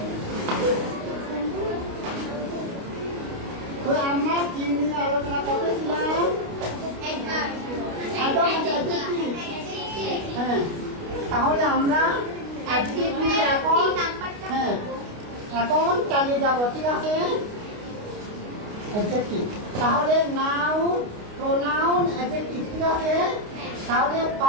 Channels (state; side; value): late; left; 29 ms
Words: তো আমরা কি নিয়ে আলোচনা করতেছিলাম? হ্যাঁ, তাহলে আমরা এখন চালিয়ে যাব, ঠিক আছে? অ্যাডজেক্টিভ, তাহলে নাউন, প্রোনাউন, অ্যাডজেক্টিভ, ঠিক আছে? তাহলে